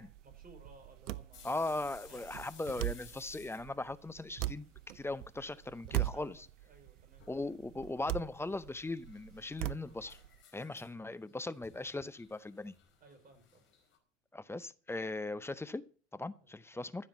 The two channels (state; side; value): normal; both; correlation 0.54